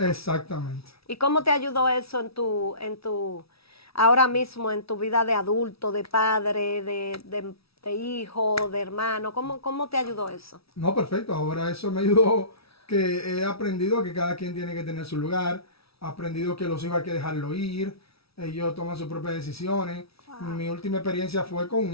Exactamente. ¿Y cómo te ayudó eso ahora mismo en tu vida de adulto, de padre, de hijo, de hermano? ¿Cómo te ayudó eso? No, perfecto. Ahora eso me ayudó, que he aprendido que cada quien tiene que tener su lugar. He aprendido que los hijos hay que dejarlo ir. Ellos toman sus propias decisiones. Mi última experiencia fue con un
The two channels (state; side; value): late; right; 0.76 ms